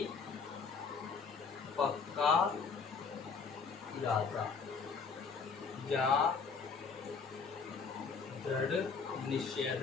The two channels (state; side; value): quieter; right; 5.3 dB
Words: पक्का इरादा या दृढ़ निश्चय,